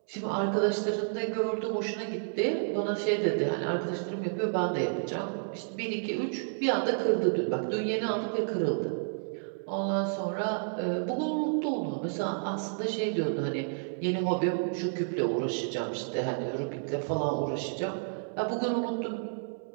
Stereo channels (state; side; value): silent; left; digital silence